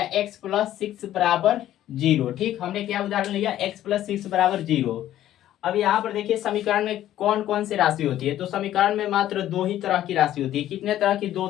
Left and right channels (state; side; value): quieter; right; 12.7 dB